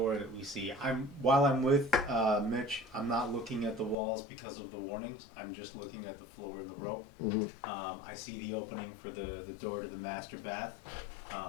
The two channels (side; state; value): right; drops out; at 4.0 s